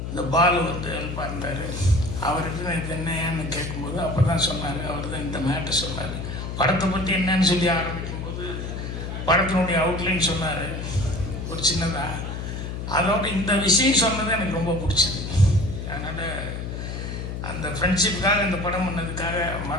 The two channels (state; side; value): noise; left; hum, 6 dB below the sound